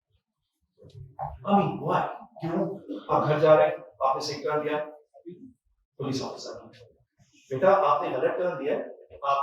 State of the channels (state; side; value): identical; both; correlation 1.00